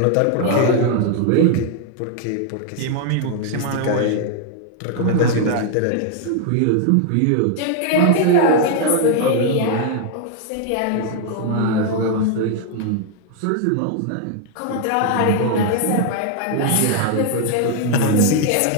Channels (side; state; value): both; different; correlation 0.00